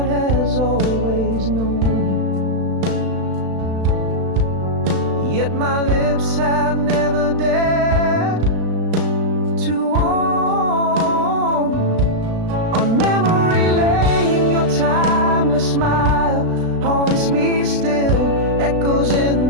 has always known, yet my lips have never dared to own. On memory lane, your timeless smile haunts me still, echoes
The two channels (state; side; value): late; left; 36 ms